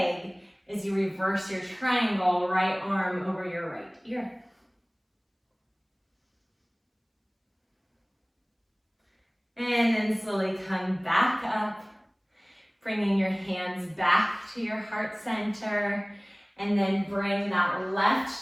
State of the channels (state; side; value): identical; both; correlation 1.00